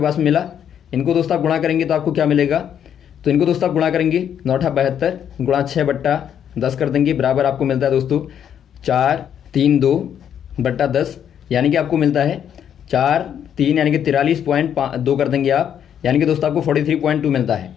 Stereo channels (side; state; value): right; quieter; 9.1 dB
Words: में मिला। इनको दोस्तों आप गुणा करेंगे तो आपको क्या मिलेगा, तो इनको दोस्तों आप गुणा करेंगे 9×8 = 72 गुणा 6/10 कर देंगे, बराबर आपको मिलता है दोस्तों 432/10, यानी कि आपको मिलता है 4×3 यानी कि 43.2 कर देंगे आप, यानी कि दोस्तों आपको 43.2 मिलता है।